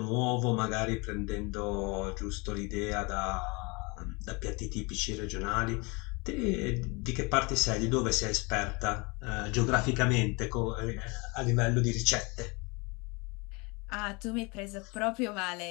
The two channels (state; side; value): quieter; right; 28.2 dB